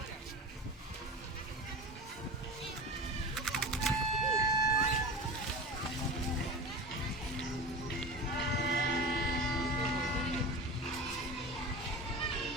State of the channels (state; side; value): normal; both; correlation 0.30